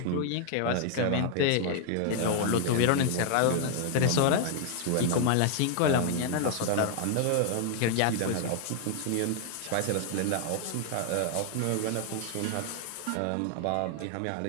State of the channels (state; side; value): different; both; correlation 0.00